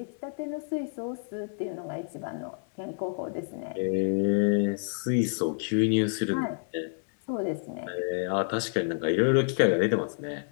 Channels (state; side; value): silent; right; 59 dB below the other